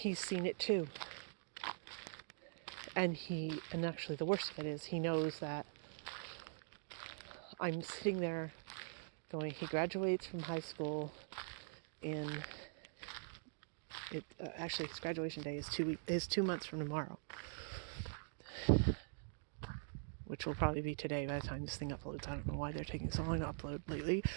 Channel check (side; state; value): left; silent; digital silence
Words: seen it too. And actually the worst of it is he knows that I'm sitting there going, he graduates from high school actually his graduation day is 2 months from tomorrow. Which will probably be today by the time this thing uploads. I don't know why they're taking so long to upload lately,